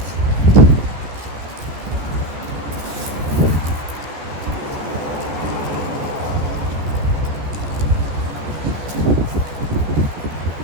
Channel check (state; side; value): late; left; 14 ms